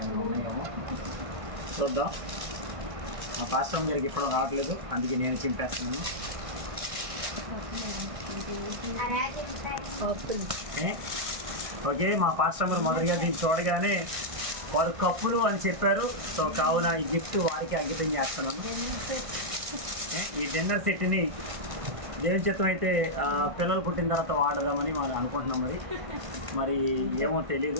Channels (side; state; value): left; late; 1.6 ms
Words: ఏమైనా ఉన్నాయేమో చూద్దాం. మా పాస్టర్ గారికి ఇప్పుడు రావట్లేదు, అందుకే నేను చింపేస్తున్నాను. ఓకే, మా పాస్టర్ గారు మొదటిగా దీన్ని చూడగానే వారు కప్పులు అని చెప్పారు. సో కావున ఈ గిఫ్ట్ వారికి అంకితం చేస్తున్నాను. ఈ డిన్నర్ సెట్ని దేవుని చిత్తం అయితే పిల్లలు పుట్టిన తర్వాత వాడదామని మనం అనుకుంటున్నాం. మరి ఏమో